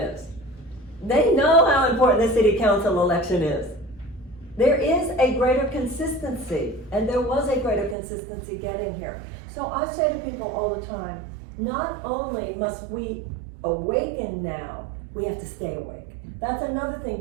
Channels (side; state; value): left; drops out; at 8.0 s